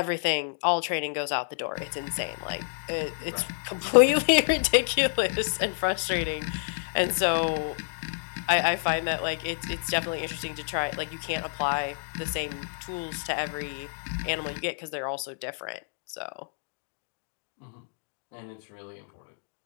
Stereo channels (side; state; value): right; silent; digital silence